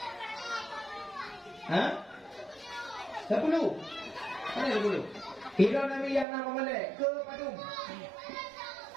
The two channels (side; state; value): left; drops out; at 6.2 s